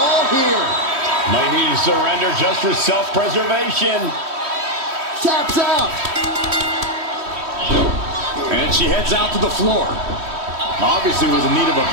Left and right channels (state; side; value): late; left; 3.1 ms